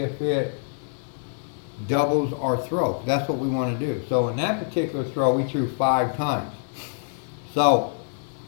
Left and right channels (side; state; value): right; silent; digital silence